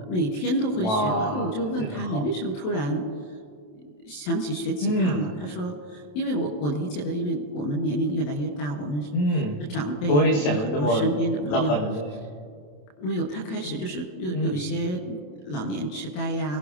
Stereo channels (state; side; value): late; right; 27 ms